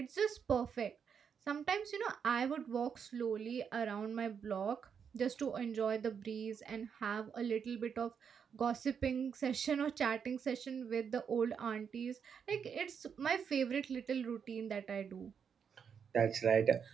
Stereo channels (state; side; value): quieter; left; 7.0 dB